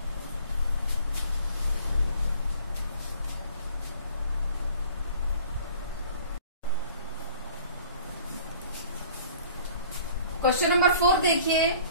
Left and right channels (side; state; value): both; inverted; correlation -0.51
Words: question number 4 देखिए,